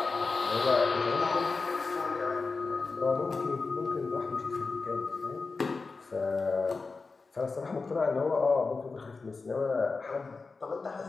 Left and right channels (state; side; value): quieter; right; 4.1 dB